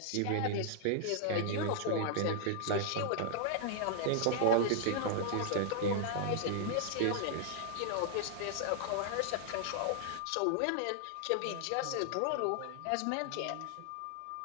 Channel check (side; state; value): both; different; correlation -0.01